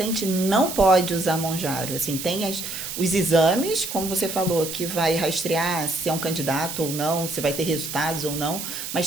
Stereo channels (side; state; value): right; noise; hiss, 7 dB below the sound